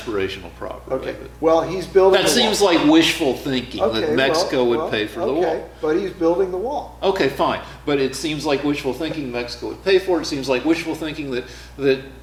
properly. Okay. Well, he's building. That seems like wishful thinking that Mexico would pay for the wall. But he's building the wall. Okay, fine. But it seems like wishful thinking Mexico would pay for it. It seems like wishful thinking that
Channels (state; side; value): identical; both; correlation 1.00